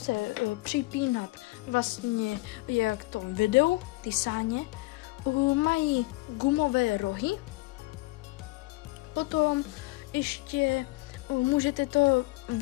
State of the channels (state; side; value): quieter; right; 22.4 dB